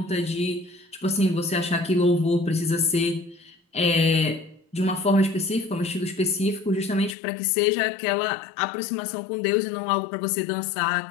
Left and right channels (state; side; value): drops out; right; at 7.2 s